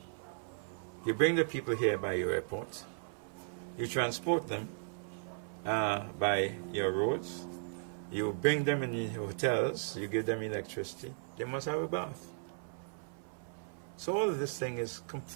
You bring the people here by your airport, you transport them by your roads, you bring them in your hotels, you give them electricity, they must have a bath. So all of this thing is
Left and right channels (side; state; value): left; silent; 54 dB below the other